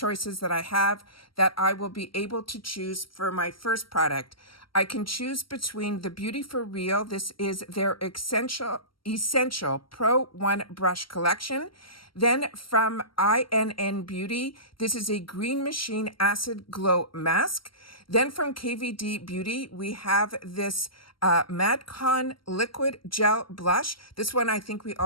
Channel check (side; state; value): right; late; 0.74 ms